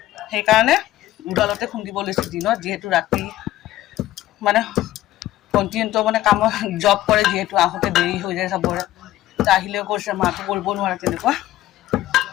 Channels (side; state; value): right; quieter; 14.9 dB